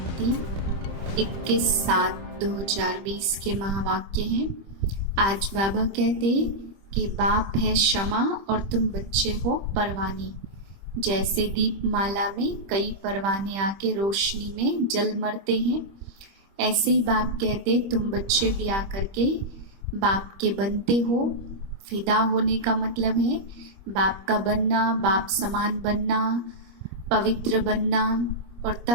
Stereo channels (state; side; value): late; left; 25 ms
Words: 21/7/2020 के महावाक्य हैं। आज बाबा कहते कि बाप है क्षमा और तुम बच्चे हो परवाने। जैसे दीपमाला में कई परवाने आके रोशनी में जल मरते हैं, ऐसे ही बाप कहते तुम बच्चे भी आकर के बाप के बनते हो। फिदा होने का मतलब है बाप का बनना, बाप समान बनना, पवित्र बनना और